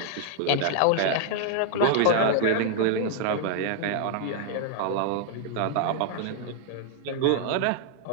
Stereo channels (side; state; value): both; different; correlation 0.00